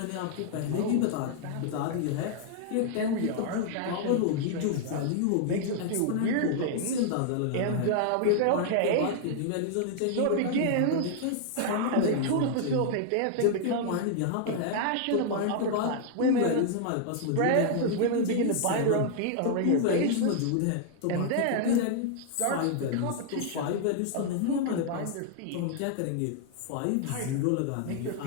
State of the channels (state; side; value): different; both; correlation -0.01